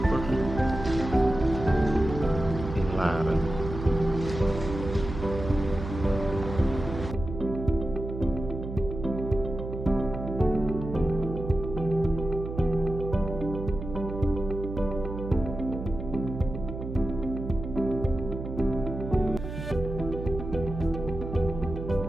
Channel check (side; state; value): right; noise; hum, 7 dB below the sound